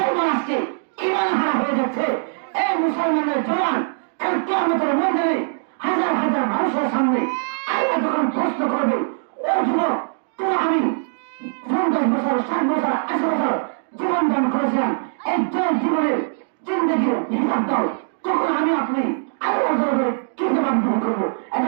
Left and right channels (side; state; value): left; silent; digital silence